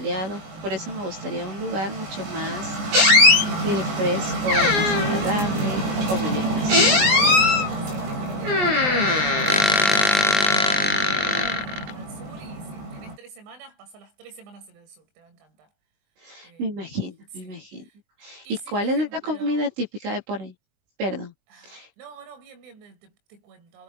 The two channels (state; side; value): late; left; 20 ms